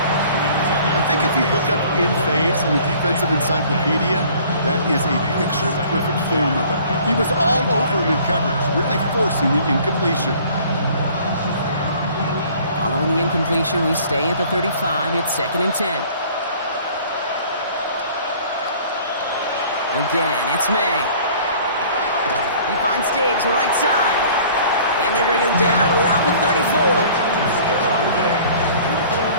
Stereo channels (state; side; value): inverted; both; correlation -0.51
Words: I think if you look up in phase in the defensive encyclopedia, that is a picture-perfect form of it. He was all over him in coverage, really forcing the incompletion. Following the incompletion, we stay at the 35. It's 2nd and 10. Again, it's May. He finds Diggs right side. And they bring him down around the 34.